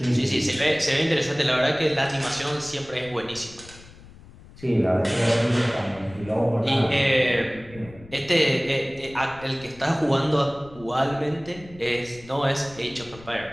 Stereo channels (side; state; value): left; noise; rumble, 20 dB below the sound